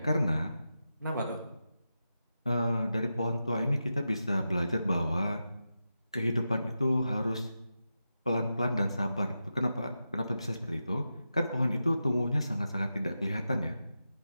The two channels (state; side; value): inverted; both; correlation -0.90